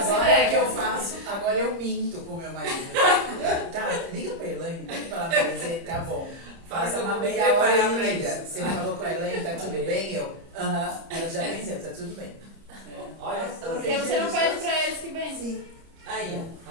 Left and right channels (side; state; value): left; late; 30 ms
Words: Agora é que eu faço, agora eu minto com meu marido. Tá, liga pra Elaine, pede pra ela me dizer, tá bom. Faça uma meia hora e liga. Você falou com a Elaine, tá tudo bem? Eu, ela já venceu, tá tudo bem. Olha só. Porque você não pede pra eles que vêm. Sim. Aí, ó.